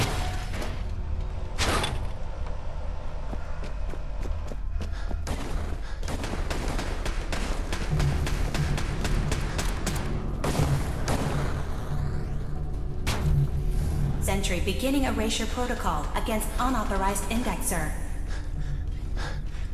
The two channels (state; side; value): identical; both; correlation 1.00